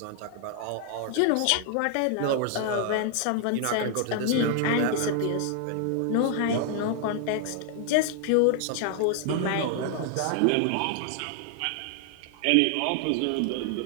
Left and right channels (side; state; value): both; different; correlation 0.00